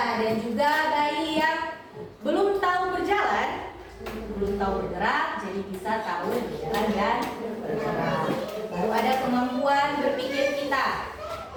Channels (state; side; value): identical; both; correlation 1.00